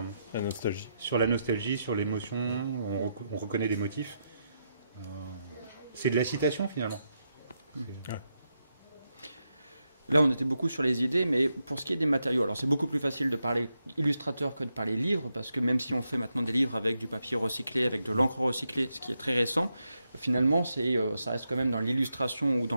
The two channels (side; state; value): both; inverted; correlation -0.84